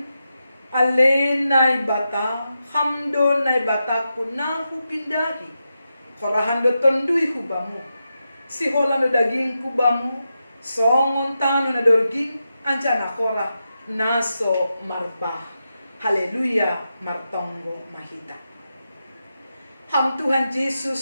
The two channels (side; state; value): both; inverted; correlation -0.88